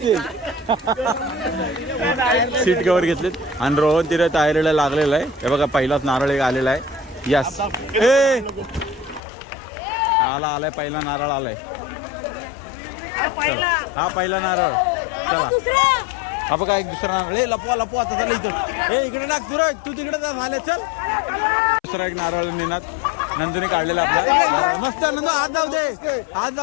सीट कव्हर घेतलेत आणि रोहन तिथे तयारीला लागलेला आहे. हे बघा पहिलाच नारळ एक आलेला आहे. यस आलाय पहिला नारळ आलाय. चला हा पहिला नारळ. चला हा बघा एक दुसरा नारळ. लपवा आता चला इथं. इकडे टाक तू तिकडे झाले. चल दुसरा एक नारळ निनात नंदूने काढलेला आपला नारळ. मस्त नंदू हात जाऊ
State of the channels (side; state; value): right; drops out; at 9.2 s